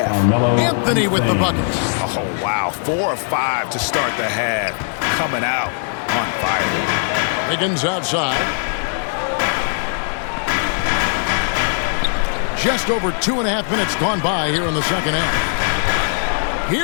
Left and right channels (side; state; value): right; silent; digital silence